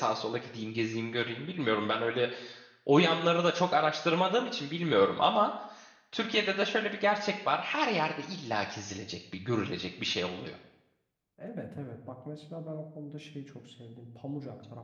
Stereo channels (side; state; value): both; identical; correlation 1.00